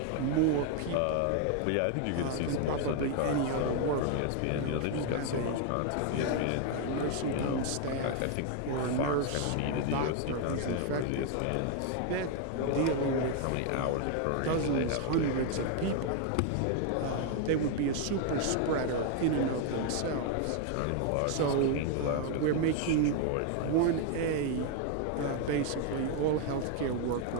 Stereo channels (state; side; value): different; both; correlation 0.01